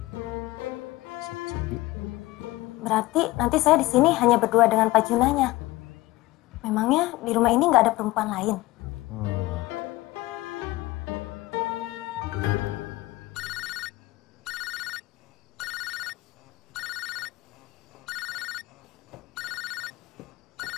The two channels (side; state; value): right; quieter; 19.1 dB